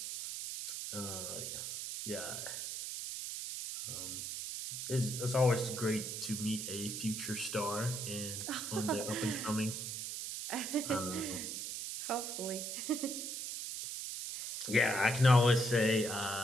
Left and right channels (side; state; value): right; noise; hiss, 5 dB below the sound